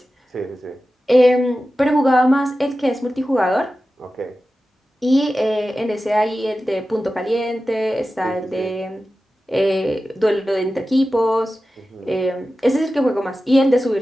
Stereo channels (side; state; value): both; normal; correlation 0.94